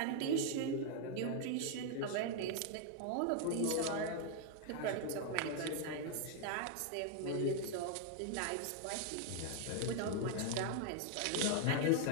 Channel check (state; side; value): different; both; correlation 0.00